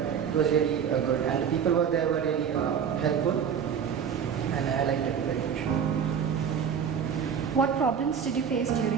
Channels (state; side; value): quieter; left; 7.5 dB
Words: it was really good. And the people were there were really helpful, and I liked it very much. What problems did you face